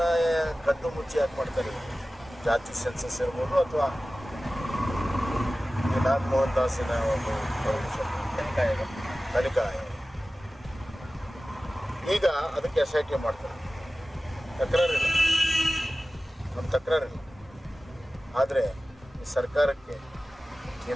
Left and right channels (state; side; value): normal; both; correlation 0.96